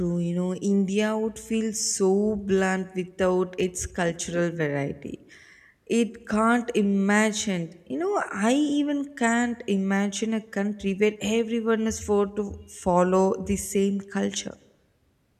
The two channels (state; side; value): identical; both; correlation 1.00